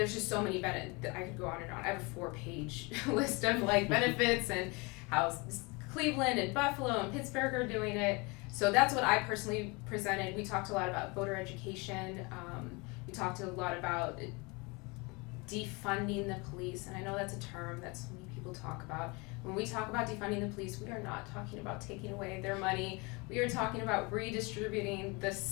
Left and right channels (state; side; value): quieter; right; 27.6 dB